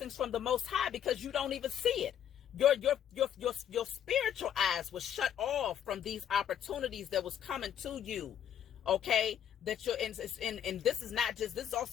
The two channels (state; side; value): quieter; right; 9.7 dB